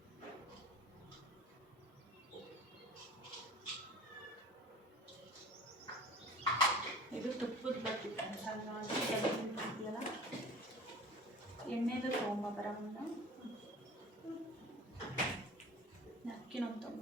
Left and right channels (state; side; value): normal; both; correlation 0.42